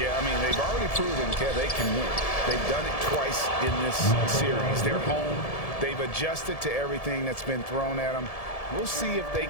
I mean, they've already proven, Kev, they can win. They've done it twice in this series. They're home. They've adjusted to everything that's been thrown at them. We'll see if they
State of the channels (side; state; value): right; late; 1.7 ms